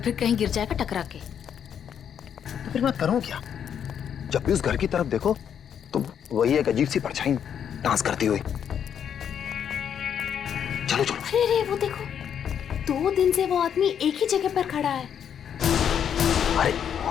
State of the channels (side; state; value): right; quieter; 8.5 dB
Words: कहीं गिर जाएगा टकरा के। तो फिर मैं करूं क्या? जब भी उस घर की तरफ देखो तो वही एक अजीब सी परछाई डांस करती हुई। चलो चलो। अरे अरे वो देखो, 2 दिन से वो आदमी एक ही जगह पर खड़ा है। अरे